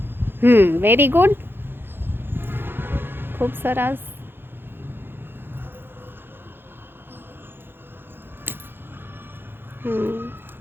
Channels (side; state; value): left; late; 0.10 ms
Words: વેરી ગુડ, ખૂબ સરસ.